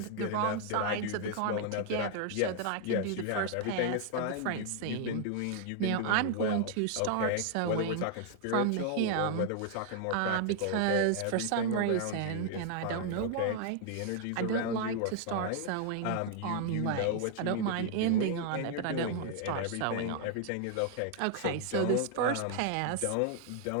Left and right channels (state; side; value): different; both; correlation 0.00